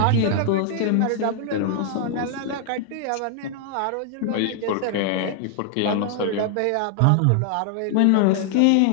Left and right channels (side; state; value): both; different; correlation 0.00